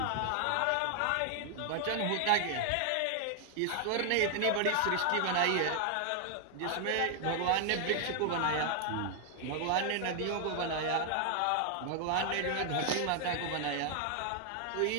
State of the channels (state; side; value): different; both; correlation 0.00